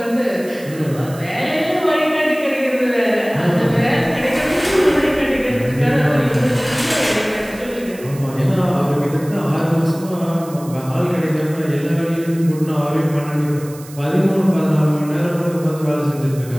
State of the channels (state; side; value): noise; right; hiss, 19 dB below the sound